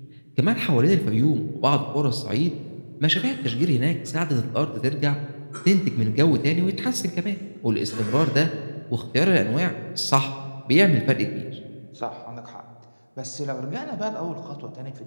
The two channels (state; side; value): inverted; both; correlation -1.00